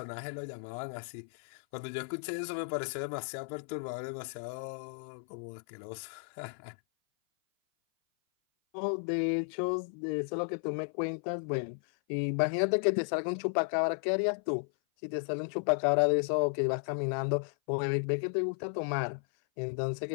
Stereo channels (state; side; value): silent; right; 55 dB below the other